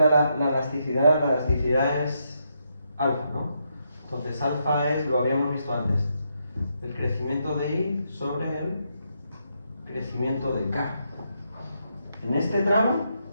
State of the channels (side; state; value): both; inverted; correlation -0.80